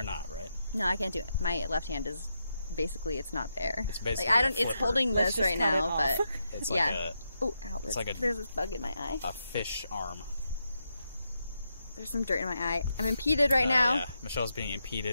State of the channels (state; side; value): inverted; both; correlation -0.84